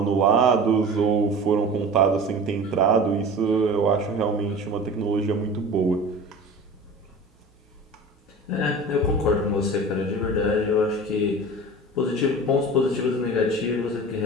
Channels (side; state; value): both; normal; correlation 0.36